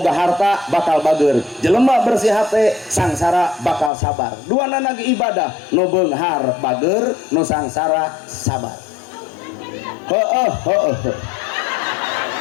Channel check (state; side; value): drops out; right; at 3.9 s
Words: harta bakal bager, jelema bersih hate sangsara bakal sabar. Duana ge ibadah, nu beunghar bager, nu sangsara sabar. Heueuh.